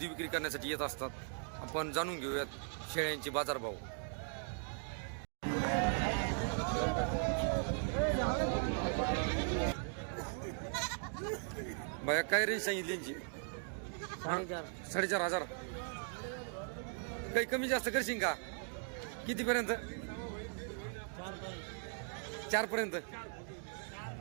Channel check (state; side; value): silent; left; 52 dB below the other